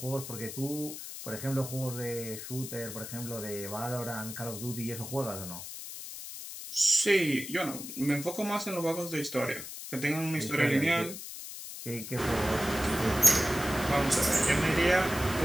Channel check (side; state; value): left; noise; hiss, 10 dB below the sound